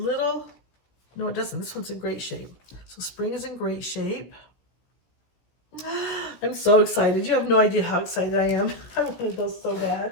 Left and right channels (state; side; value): late; right; 17 ms